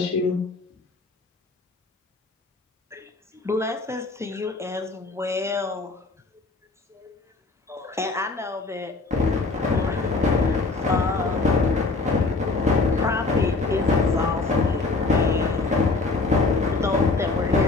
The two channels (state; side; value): quieter; right; 3.6 dB